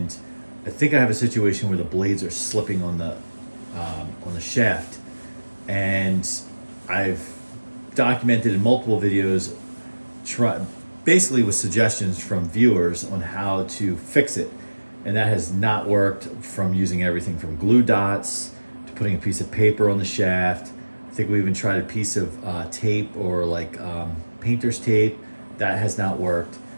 I think I have a situation where the blades are slipping on the shaft, and I've documented in multiple videos, basically with suggestions from viewers on how to fix it, and that has not worked, from using everything from glue dots to putting a piece of paper on the shaft. I think we even tried a piece of tape, or like painter's tape. That has not worked.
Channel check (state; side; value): inverted; both; correlation -1.00